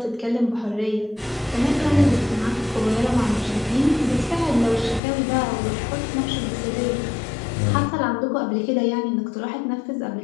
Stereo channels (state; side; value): drops out; right; at 5.0 s